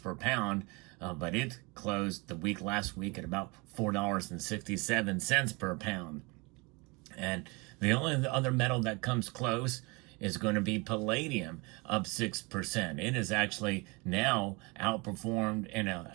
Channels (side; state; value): left; quieter; 27.6 dB